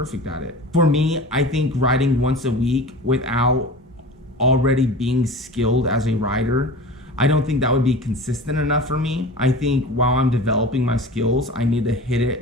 at it. For me, I think writing once a week without already being skilled as a writer, I don't think that would be consistent enough for me. I think while I'm developing my skills, I need to hit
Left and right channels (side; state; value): both; normal; correlation 0.36